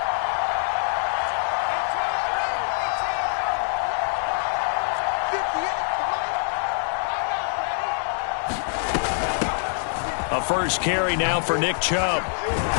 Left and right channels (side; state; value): right; silent; digital silence